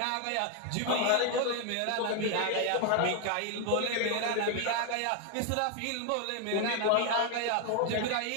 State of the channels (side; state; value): both; different; correlation 0.01